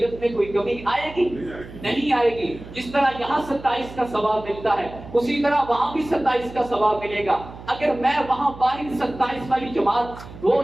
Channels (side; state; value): right; noise; hum, 15 dB below the sound